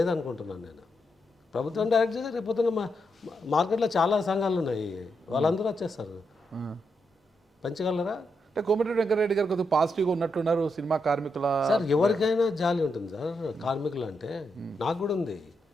నేను. ప్రభుత్వం డైరెక్ట్ చేస్తే రేపు మార్కెట్లో చాలా సంఘాలు ఉన్నాయి, వాళ్ళందరూ వచ్చేస్తారు. పంచగలరా? అంటే కోమటిరెడ్డి వెంకటరెడ్డి గారు కొద్దిగా పాజిటివ్గా ఉన్నట్టున్నారు సినిమా కార్మికుల. సార్ ఎవరికైనా జాలి ఉంటుంది సార్, కార్మికులు అంటే నాకు కూడా ఉంది,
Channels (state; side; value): normal; both; correlation 0.82